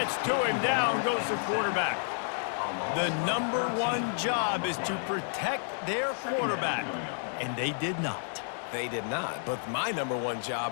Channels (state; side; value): silent; right; digital silence